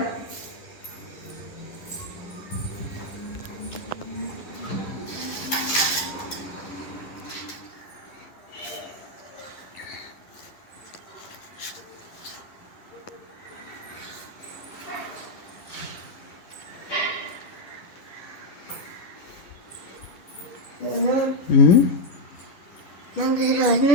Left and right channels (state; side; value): late; right; 11 ms